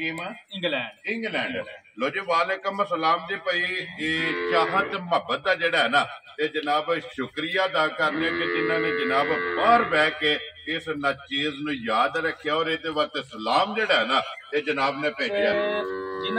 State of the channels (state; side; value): identical; both; correlation 1.00